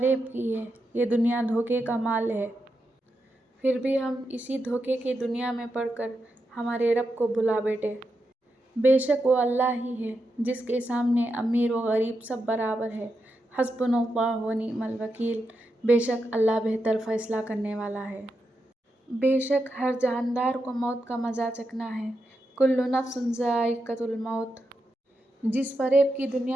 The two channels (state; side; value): normal; both; correlation 0.86